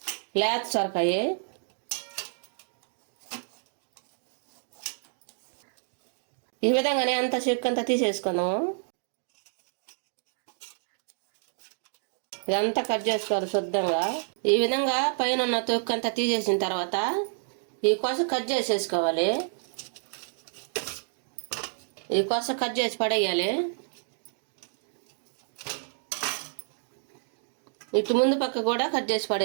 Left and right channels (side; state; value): left; silent; digital silence